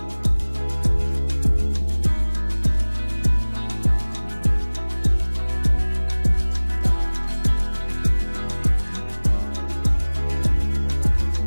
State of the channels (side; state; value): both; inverted; correlation -1.00